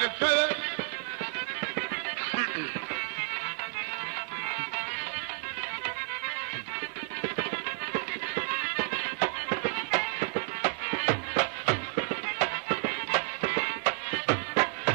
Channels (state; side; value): quieter; left; 35.9 dB